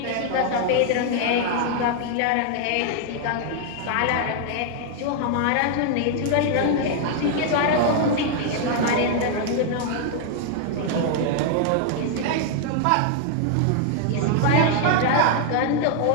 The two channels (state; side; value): different; both; correlation 0.00